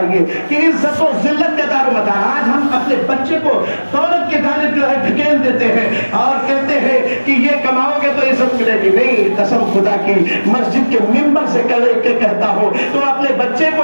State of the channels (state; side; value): inverted; both; correlation -1.00